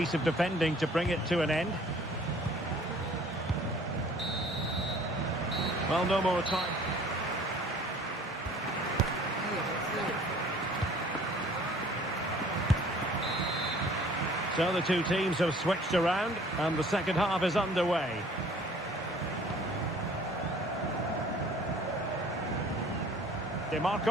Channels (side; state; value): both; normal; correlation 0.52